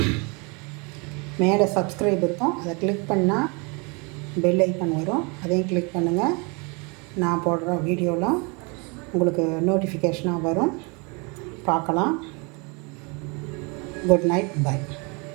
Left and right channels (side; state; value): left; quieter; 31.3 dB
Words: மேலே சப்ஸ்கிரைப் இருக்கும், அதை கிளிக் பண்ணால் பெல் ஐக்கான் வரும், அதையும் கிளிக் பண்ணுங்கள். நான் போடுற வீடியோலாம் உங்களுக்கு நோட்டிஃபிகேஷனாக வரும், பார்க்கலாம். Good night, by.